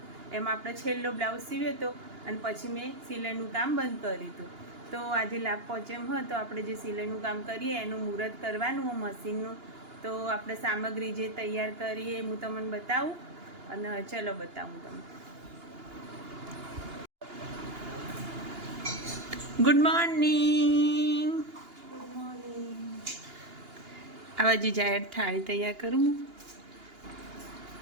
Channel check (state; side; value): late; left; 2.9 ms